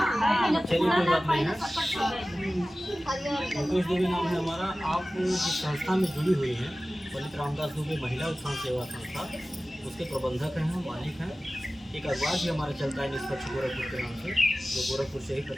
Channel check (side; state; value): both; normal; correlation 0.96